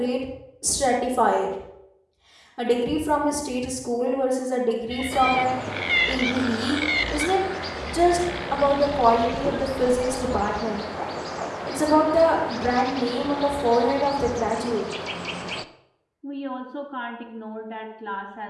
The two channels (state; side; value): identical; both; correlation 1.00